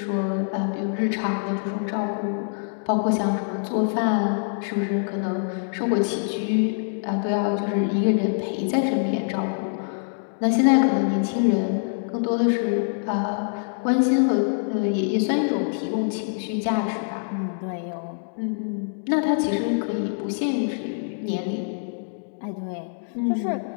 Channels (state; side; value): silent; right; digital silence